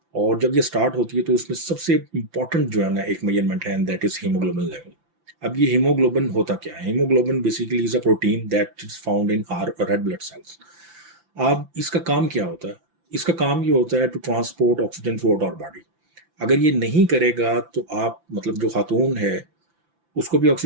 اور جب یہ سٹارٹ ہوتی ہے تو اس میں سب سے امپورٹنٹ جو ہے نا ایک میجرمنٹ ہے، دیٹ از ہیموگلوبن لیول. اب یہ ہیموگلوبن ہوتا کیا ہے؟ Haemoglobin basically is a protein that is found in our red blood cells. اب اس کا کام کیا ہوتا ہے؟ اس کا کام یہ ہوتا ہے to transport oxygen throughout our body. اگر یہ نہیں کرے گا تو آپ جو خاتون ہے اس کو بھی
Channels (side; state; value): left; late; 5.9 ms